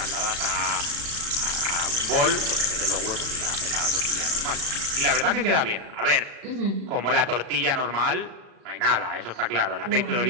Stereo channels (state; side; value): late; left; 36 ms